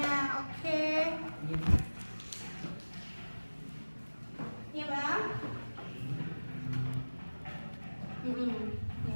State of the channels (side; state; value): both; inverted; correlation -1.00